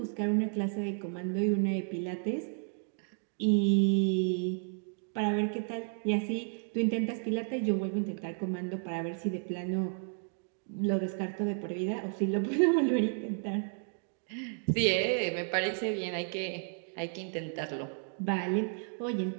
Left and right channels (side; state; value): left; silent; 56 dB below the other